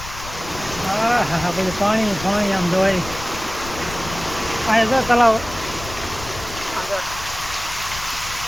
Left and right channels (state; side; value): noise; left; rumble, 13 dB below the sound